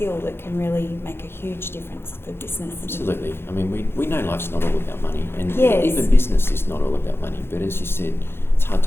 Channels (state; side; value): late; right; 0.11 ms